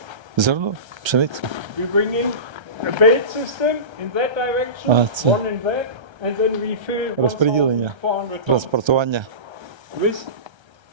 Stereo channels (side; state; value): left; late; 1.3 ms